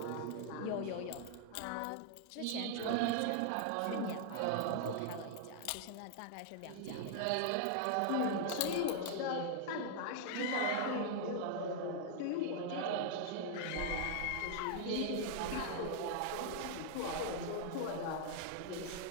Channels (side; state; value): both; different; correlation -0.01